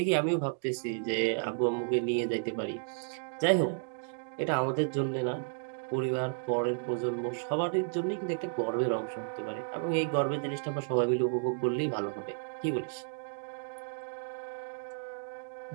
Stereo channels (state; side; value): silent; left; digital silence